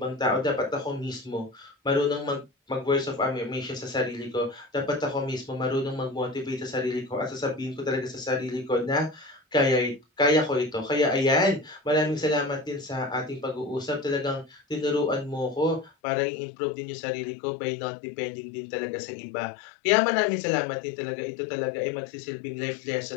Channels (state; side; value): drops out; right; at 15.9 s